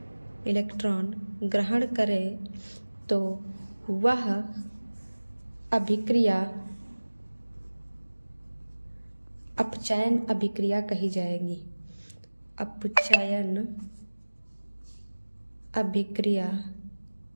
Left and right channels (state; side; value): inverted; both; correlation -1.00